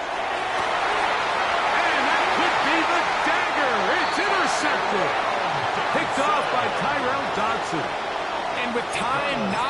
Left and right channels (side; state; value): both; identical; correlation 1.00